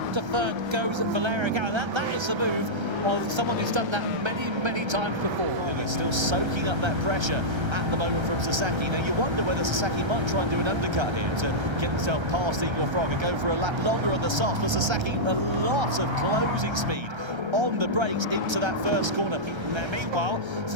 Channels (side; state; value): left; late; 1.3 ms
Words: to third goes Valerio Gallo. That is the move of someone who's done that many times before. And he's still soaking up that pressure at the moment from Sasaki. Now you wonder whether Sasaki might try and do an undercut here to get himself past Igor Fraga, go for a lap longer on the softs, but Sasaki a lot of closing speed on the brakes into that first corner. Meanwhile,